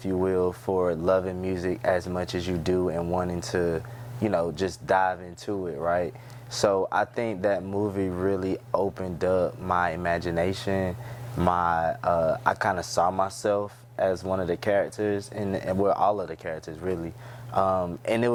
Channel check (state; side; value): identical; both; correlation 1.00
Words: you will, for loving music as much as you do and wanting to, you know, just dive into it, right? So I think that movie really opened up my imagination. I kind of saw myself as one of the characters, and well, all of the characters really. And it